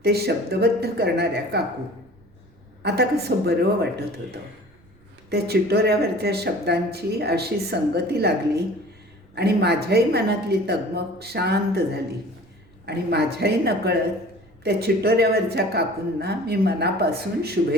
ते शब्दबद्ध करणाऱ्या काकू. आता कसं बरं वाटत होतं. त्या चिटोऱ्यावरच्या शब्दांची अशी संगती लागली आणि माझ्याही मनातली तगमग शांत झाली आणि माझ्याही नकळत त्या चिटोऱ्यावरच्या काकूंना मी मनापासून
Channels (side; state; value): right; noise; rumble, 29 dB below the sound